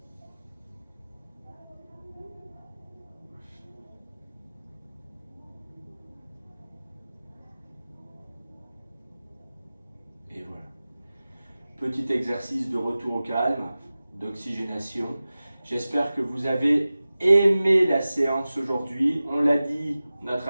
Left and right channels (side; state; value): both; inverted; correlation -0.96